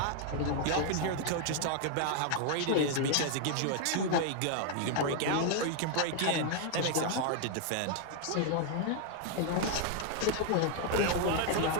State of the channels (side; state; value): both; different; correlation 0.00